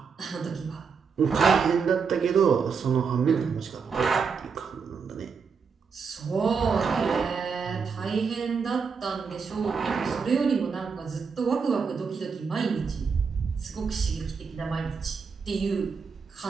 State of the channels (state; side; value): quieter; left; 5.6 dB